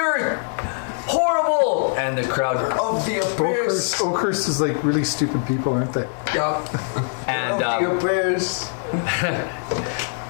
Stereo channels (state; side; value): silent; right; 64 dB below the other